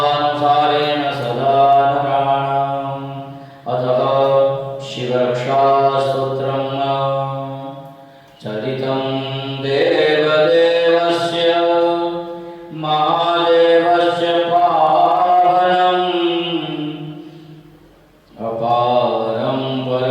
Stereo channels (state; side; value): identical; both; correlation 1.00